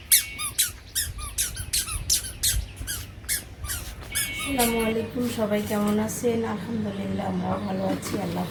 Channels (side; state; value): both; identical; correlation 1.00